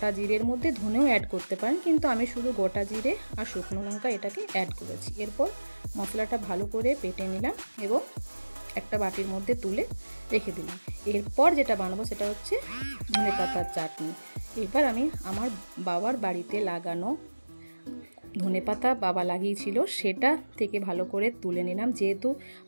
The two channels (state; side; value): inverted; both; correlation -1.00